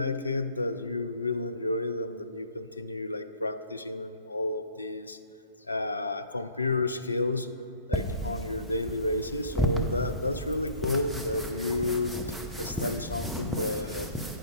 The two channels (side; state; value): both; inverted; correlation -0.50